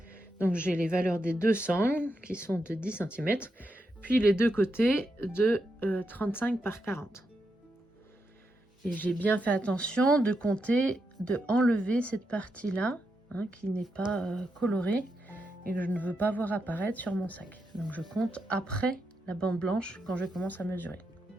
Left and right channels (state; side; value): normal; both; correlation 0.84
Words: Donc j'ai les valeurs des deux sangles qui sont de 10 cm, puis les deux côtés de 35 par 40. Et j'ai bien fait attention de compter, de enlever cette partie-là, qui n'est pas colorée et que je ne veux pas voir apparaître sur mon sac. Donc je compte après la bande blanche quand je commence à mesurer.